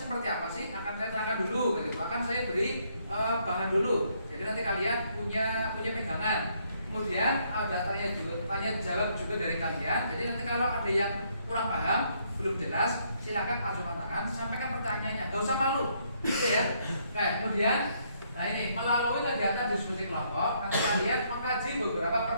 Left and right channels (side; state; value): both; inverted; correlation -0.71